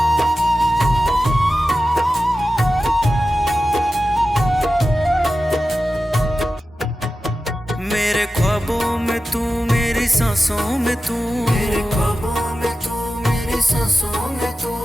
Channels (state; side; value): normal; both; correlation 0.93